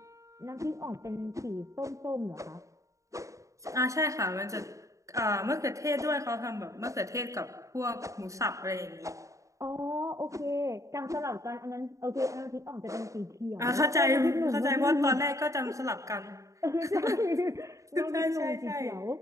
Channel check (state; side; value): late; left; 0.15 ms